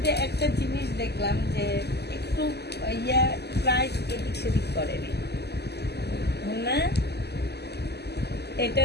যে একটা জিনিস দেখলাম যে একটু প্রাইস এদিক সেদিক করেনি না। এটা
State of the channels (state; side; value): late; right; 0.48 ms